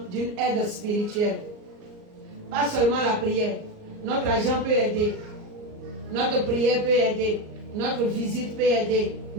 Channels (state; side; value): late; left; 38 ms